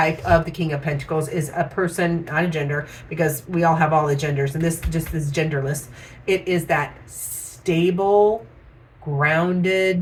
of the King of Pentacles is a person, not a gender, because we all have all the genders, and this just is genderless. It is that stable,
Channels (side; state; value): both; identical; correlation 1.00